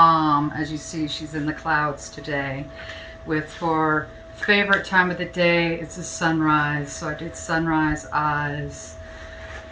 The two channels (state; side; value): identical; both; correlation 1.00